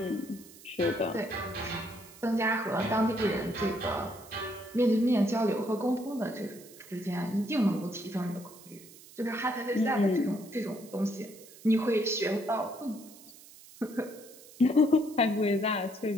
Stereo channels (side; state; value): right; noise; hiss, 20 dB below the sound